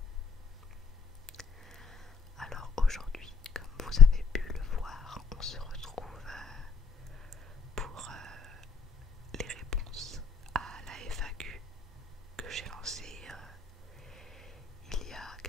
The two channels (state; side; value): quieter; right; 5.7 dB